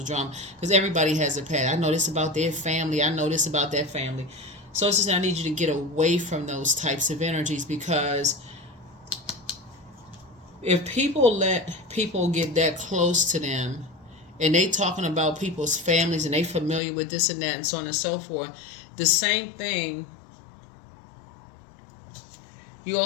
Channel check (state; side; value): drops out; right; at 16.8 s